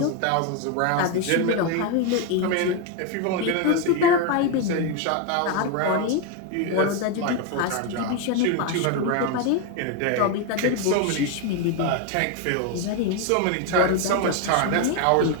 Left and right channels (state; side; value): different; both; correlation 0.02